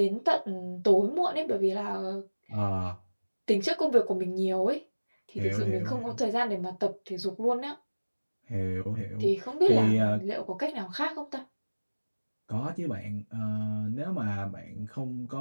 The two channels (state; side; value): inverted; both; correlation -1.00